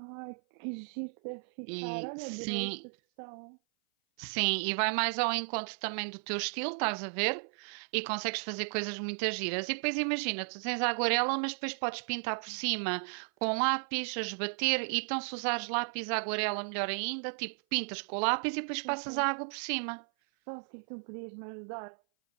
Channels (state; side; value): silent; left; 55 dB below the other